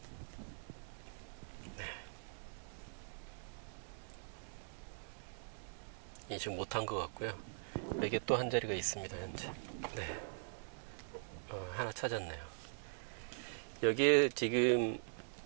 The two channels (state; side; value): silent; left; digital silence